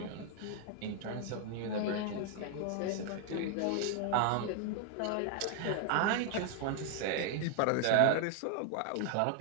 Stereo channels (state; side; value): different; both; correlation 0.00